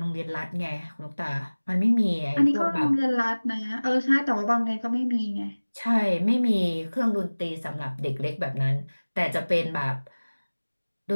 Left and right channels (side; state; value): both; inverted; correlation -1.00